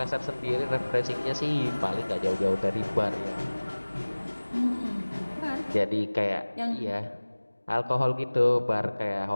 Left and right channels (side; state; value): both; inverted; correlation -1.00